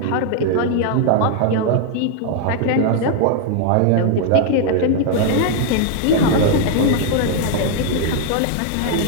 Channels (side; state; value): both; different; correlation 0.00